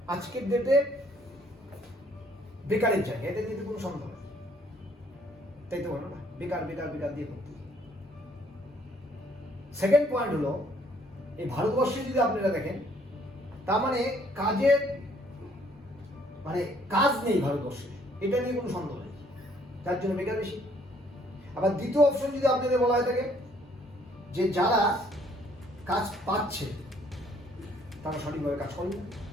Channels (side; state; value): both; normal; correlation 0.63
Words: আজকের ডেটে বেকারের জায়গা, এটা নিয়ে কোনো সন্দেহ নেই, তাই তো বলো না? বেকার বেকার বেকার দিয়ে করতে। সেকেন্ড পয়েন্ট হলো, এই ভারতবর্ষে যদি আপনারা দেখেন, তার মানে কাজের মানে কাজ নেই ভারতবর্ষে, এটা নিয়ে কোনো সন্দেহ নেই, যার জন্য বেকার বেশি। আবার দ্বিতীয় অপশন যদি আপনাদের বলা হয় থাকে যে যারা কাজ পাচ্ছে তারা সঠিকভাবে কাজ করে না,